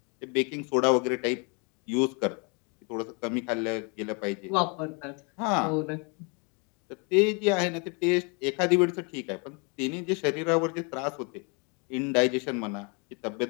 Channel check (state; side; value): quieter; right; 33.6 dB